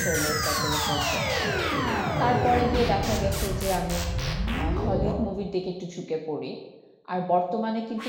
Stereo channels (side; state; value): both; identical; correlation 1.00